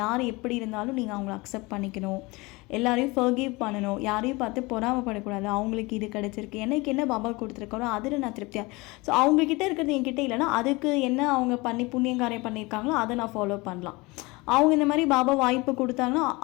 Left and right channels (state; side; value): quieter; right; 24.0 dB